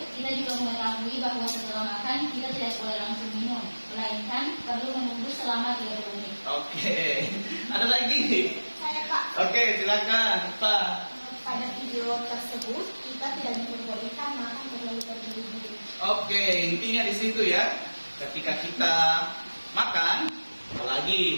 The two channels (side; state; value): both; inverted; correlation -1.00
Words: kita juga mengetahui bahwa setelah makan kita tidak boleh langsung minum, melainkan perlu menunggu selama 30 menit. Oke, ada lagi? Saya, Pak. Oke, silakan Pak. Pada video tersebut, kita tidak diperbolehkan makan terlalu terburu-buru. Oke, intinya di situ ya. Ketika kita makan,